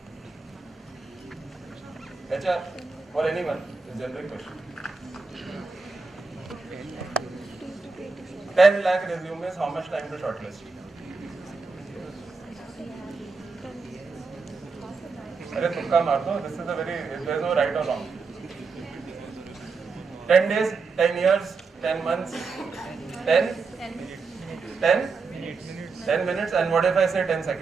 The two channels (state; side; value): quieter; left; 4.5 dB